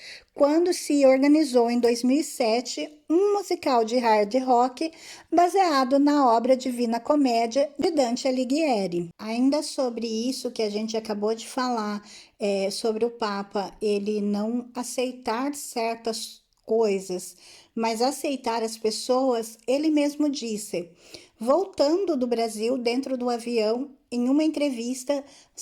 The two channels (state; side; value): identical; both; correlation 1.00